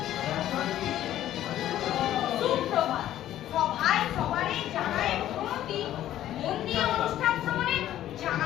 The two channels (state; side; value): quieter; right; 12.6 dB